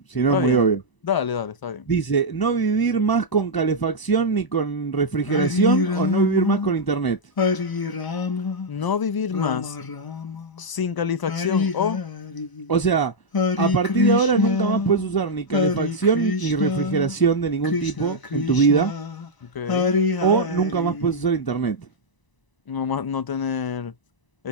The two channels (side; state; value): right; late; 1.0 ms